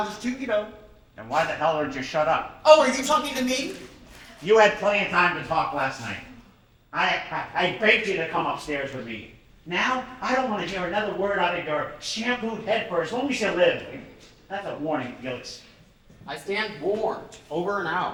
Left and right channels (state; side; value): identical; both; correlation 1.00